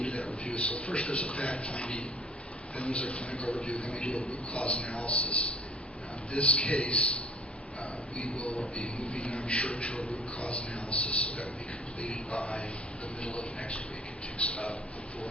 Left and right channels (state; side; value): normal; both; correlation 0.53